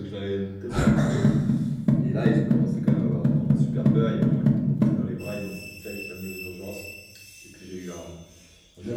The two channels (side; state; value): both; identical; correlation 1.00